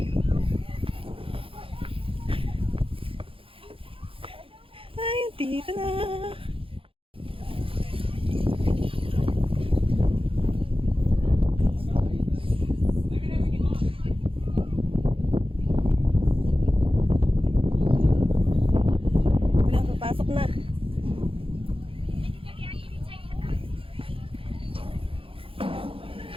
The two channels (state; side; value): late; left; 0.26 ms